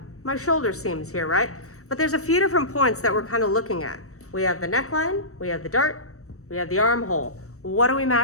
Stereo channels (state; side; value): late; right; 0.65 ms